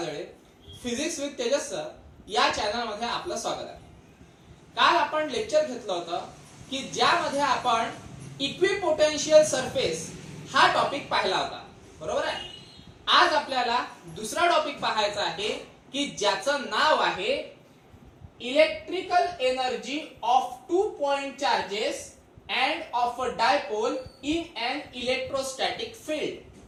Physics with Tejas sir या चॅनलमध्ये आपलं स्वागत आहे. काल आपण लेक्चर घेतलं होतं की ज्यामध्ये आपण इक्विपोटेन्शियल सरफेस हा टॉपिक पाहिला होता, बरोबर आहे. आज आपल्याला दुसरा टॉपिक पाहायचा आहे की ज्याचं नाव आहे electrical energy of 2 point charges and of a dipole in an electrostatic field.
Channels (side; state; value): both; identical; correlation 1.00